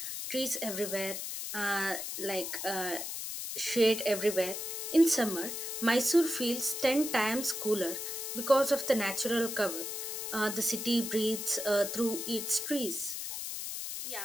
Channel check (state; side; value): noise; left; hiss, 5 dB below the sound